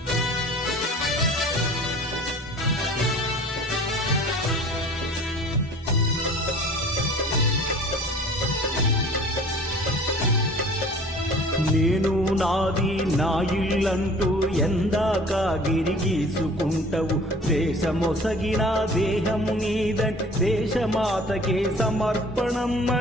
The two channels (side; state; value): both; normal; correlation 0.47